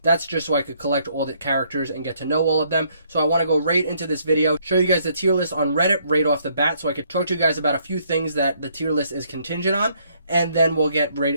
that's just so I could collect all the characters and get to know all of them. So I want to go right into this video, show you guys the tier list on Reddit right off the bat, so I could talk to you guys about a few things that the tier list is contingent on, and then we'll get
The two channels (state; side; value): inverted; both; correlation -0.68